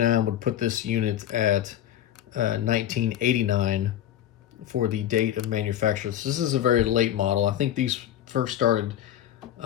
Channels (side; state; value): right; quieter; 11.4 dB